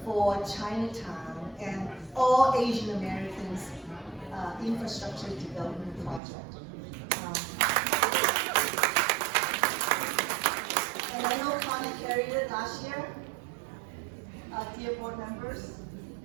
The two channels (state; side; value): drops out; left; at 6.2 s